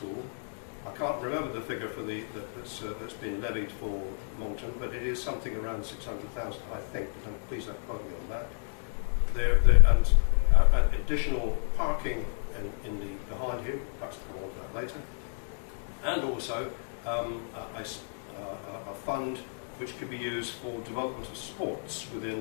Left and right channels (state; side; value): silent; right; digital silence